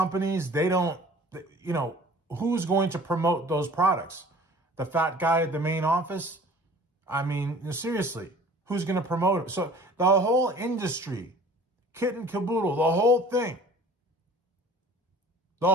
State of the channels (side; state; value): both; normal; correlation 0.48